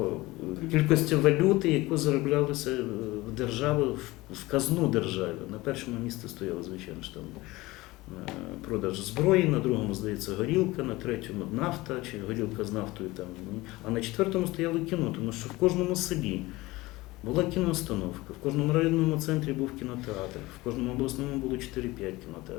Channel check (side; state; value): right; quieter; 20.2 dB